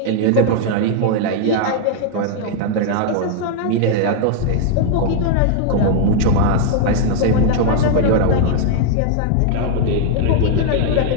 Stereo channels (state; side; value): different; both; correlation 0.00